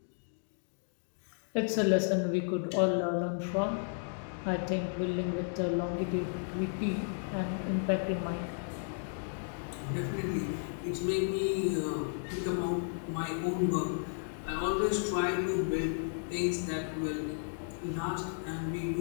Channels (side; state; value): right; silent; digital silence